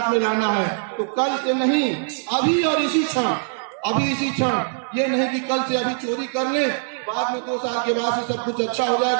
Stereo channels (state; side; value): silent; left; digital silence